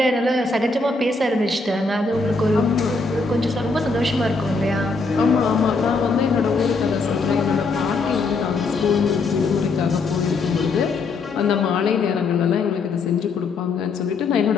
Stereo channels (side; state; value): right; quieter; 3.9 dB